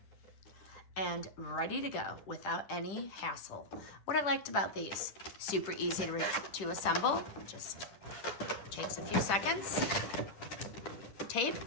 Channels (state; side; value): late; right; 10 ms